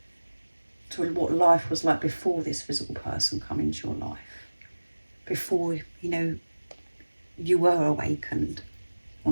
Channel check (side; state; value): both; inverted; correlation -1.00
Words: to what life was like before this physical person come into your life. Before, you were awakened